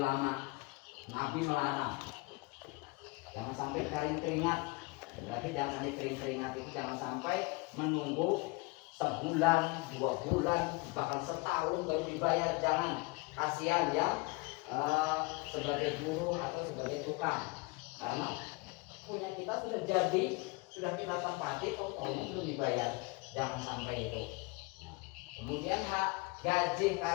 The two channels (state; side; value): quieter; right; 25.9 dB